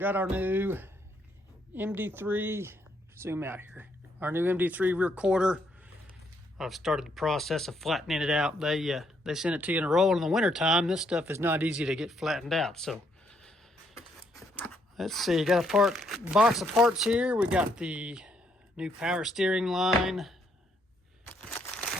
our new MD3, zoom out here, our new MD3 rear quarter. I've started the process of flattening it out. They send it to you in a roll in the winter time. This stuff is not easy to get flattened out. So let's see, got a box of parts here. We got the new power steering line,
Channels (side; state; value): both; normal; correlation 0.73